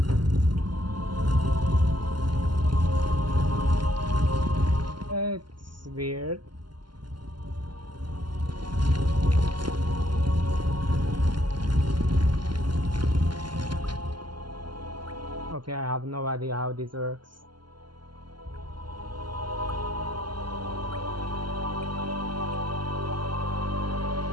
It's weird. Okay, I have no idea how this works.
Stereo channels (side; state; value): left; late; 0.71 ms